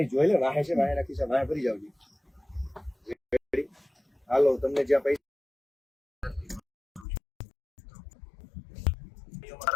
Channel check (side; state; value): right; drops out; at 7.1 s